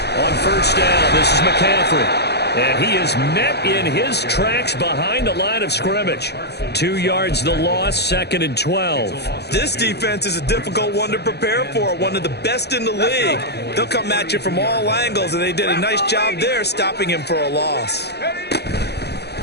On 1st down, this is McCaffrey. And he is met in his tracks behind the line of scrimmage. 2 yards the loss, 2nd and 12. This defense is a difficult one to prepare for, one of the best in the league. They'll come at you from all angles, and they did a nice job there stopping him for a loss.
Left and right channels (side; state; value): right; late; 0.48 ms